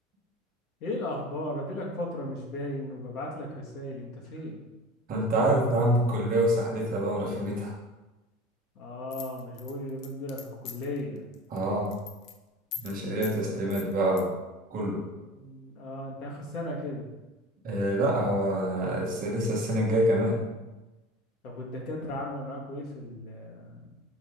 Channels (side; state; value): both; normal; correlation 0.39